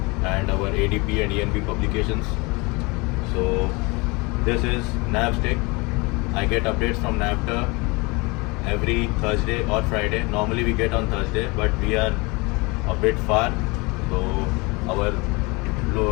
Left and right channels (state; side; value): quieter; right; 26.5 dB